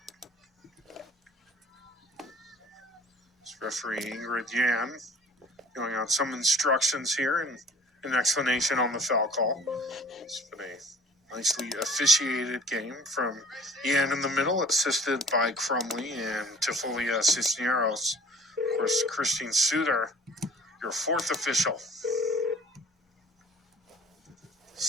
This referee Ingrid Yan going out some instructions here and an explanation on the foul call. It's been a nicely officiated game from Yan in the middle, assisted by Crumley and Tifolia Cisneros. Of course, Christine Suter, your fourth official.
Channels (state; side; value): normal; both; correlation 0.49